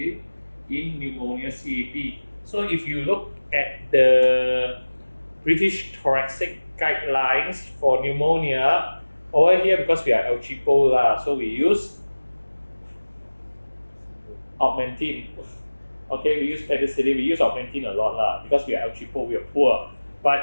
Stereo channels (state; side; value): inverted; both; correlation -1.00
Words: pneumonia CAP. So if you look at the British Thoracic guidelines for pneumonia, over here because we are El Cheapo so we use Augmentin. Okay, we use penicillin, we use Augmentin a lot because we are El Cheapo, we are poor.